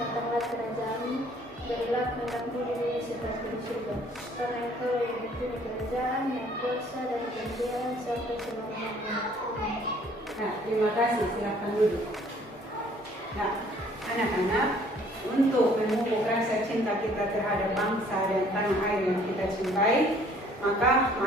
kerajaanmu, berilah kehendakmu di bumi seperti di surga. Karena Engkau yang mempunyai kerajaan, yang kuasa dan kemuliaan sampai selama-lamanya. Amin. Nah, terima kasih. Silakan duduk. Nah, anak-anak, untuk memupuk rasa cinta kita terhadap bangsa dan tanah air yang kita cintai, maka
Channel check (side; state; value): both; normal; correlation 0.58